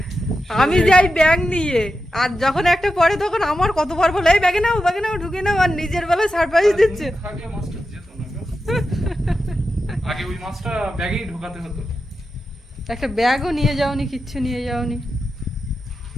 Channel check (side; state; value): both; normal; correlation 0.90